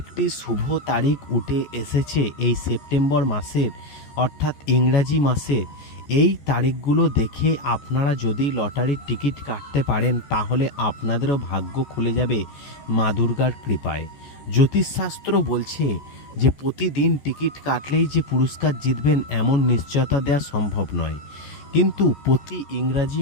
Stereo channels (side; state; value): right; late; 14 ms